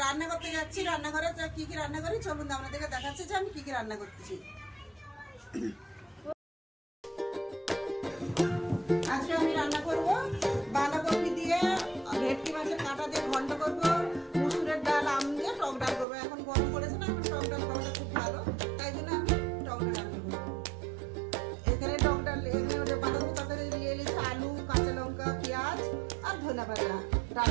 रान्ना करते जाচ্ছি। रान्नाघरे की रान्ना करी चलुन आपनादेरके देखाচ্ছি যে আমি কি রান্না করতেছি। আজকে আমি রান্না করব বাঁধাকপি দিয়ে ভেটকি মাছের কাঁটা দিয়ে ঘন্ট করব, মুসুরের ডাল আম দিয়ে টক ডাল করব। এখন গরম পড়েছে না, এখন টক ডাল খাওয়াটা খুব ভালো, তাই জন্য আমি টক ডাল রান্না করব। এখানে টক ডাল এখানে বাঁধাকপি তরকারি দিয়ে নিয়েছি আলু, কাঁচা লঙ্কা, পেঁয়াজ আর ধনে পাতা।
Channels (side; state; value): left; drops out; at 16.1 s